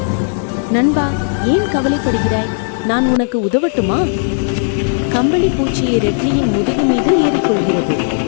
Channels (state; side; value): silent; right; digital silence